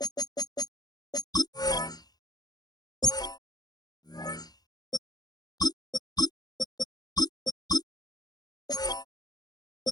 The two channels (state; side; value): late; right; 0.19 ms